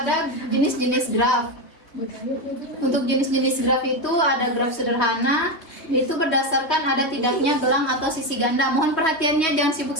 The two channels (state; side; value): late; right; 3.1 ms